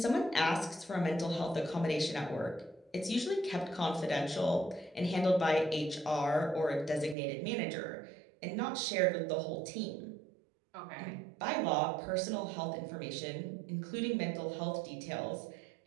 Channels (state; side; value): drops out; left; at 7.2 s